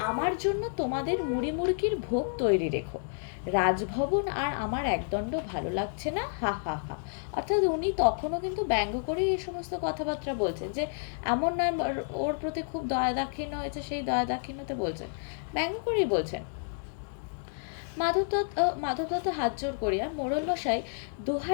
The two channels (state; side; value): silent; right; digital silence